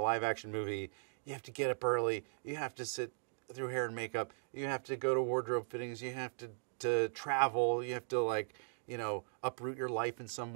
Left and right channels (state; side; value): silent; left; digital silence